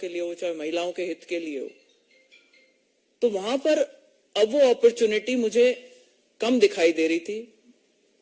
लिए हो, चाहे महिलाओं के हित के लिए हो, तो वहां पर अब वो अपॉर्चुनिटी मुझे कम दिखाई दे रही थी।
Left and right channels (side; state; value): both; identical; correlation 1.00